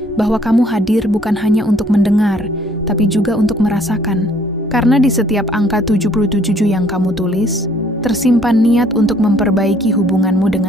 bahwa kamu hadir bukan hanya untuk mendengar, tapi juga untuk merasakan. Karena di setiap angka 77 yang kamu tulis, tersimpan niat untuk memperbaiki hubunganmu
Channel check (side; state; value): both; normal; correlation 0.61